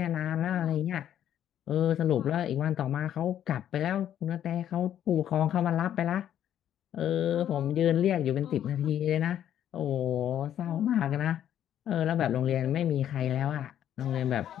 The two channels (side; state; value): right; quieter; 10.6 dB